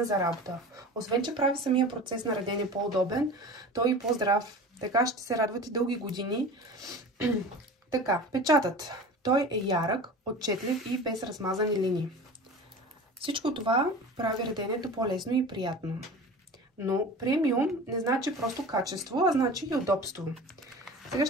за работа. Освен, че прави самия процес на редене по-удобен, той и по-здрав. Така ще се радват и дълги години. Така, печатът. Той е ярък, отчетлив и без размазани линии. Всичко това прави реденето по-лесно и приятно. Но премиум не значи просто качество, а значи и удобство. Сега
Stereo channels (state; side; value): normal; both; correlation 0.36